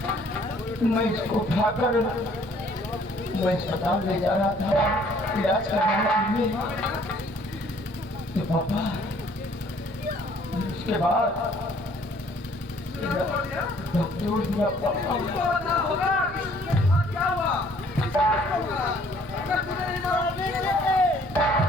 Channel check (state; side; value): normal; both; correlation 0.59